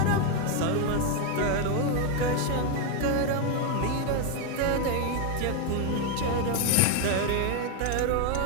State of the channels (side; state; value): both; different; correlation 0.01